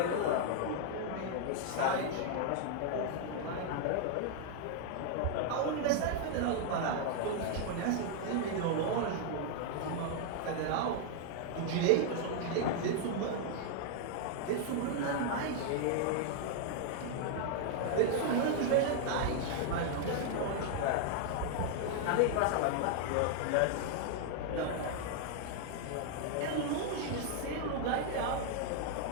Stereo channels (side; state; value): both; different; correlation 0.00